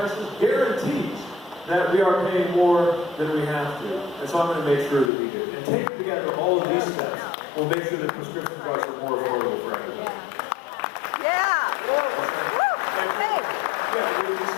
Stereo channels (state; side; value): drops out; right; at 5.1 s